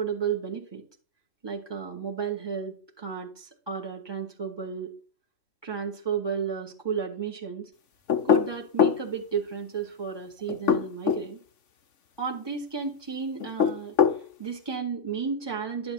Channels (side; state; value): right; late; 3.5 ms